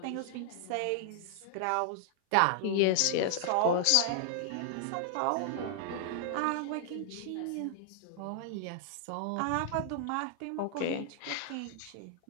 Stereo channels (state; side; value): different; both; correlation 0.00